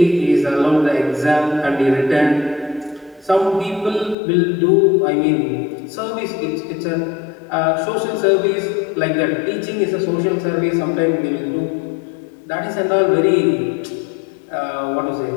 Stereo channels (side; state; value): right; drops out; at 4.2 s